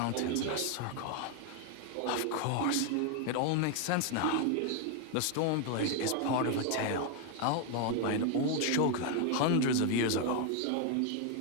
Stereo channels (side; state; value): both; different; correlation 0.01